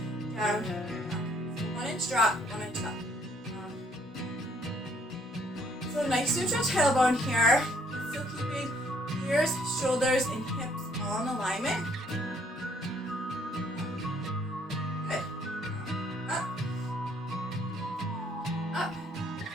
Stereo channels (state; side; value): normal; both; correlation 0.65